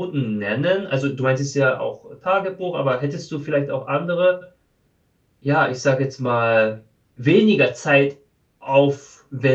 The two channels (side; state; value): both; identical; correlation 1.00